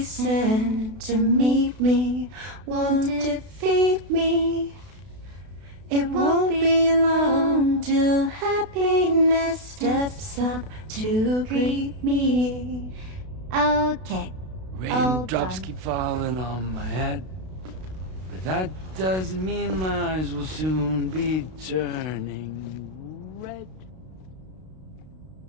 send to meet me won't defeat me. It won't be long till happiness steps up to greet me. Okay. Raindrops keep falling on my head, but that doesn't mean my eyes will soon be turning red.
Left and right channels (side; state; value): left; late; 32 ms